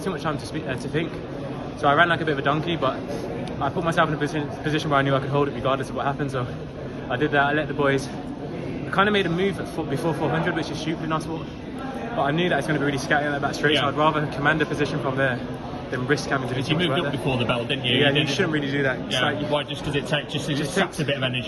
too much time to think. So I ran like a bit of a donkey, but I put myself in a position where I knew I could hold it regardless of what happened. So I did that. I let the boys. I kind of made a move before 400, which is stupid in our sport. But I knew that it's going to be really scatty on that back straight, so I'd rather command a position from there than risk having to do. You moved up before the bell, didn't you? Yeah, you shouldn't really do that. Yeah. Like why? Just because it saps a bit of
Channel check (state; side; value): identical; both; correlation 1.00